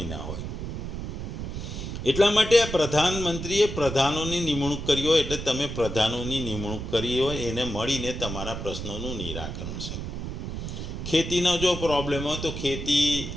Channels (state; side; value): noise; right; rumble, 6 dB below the sound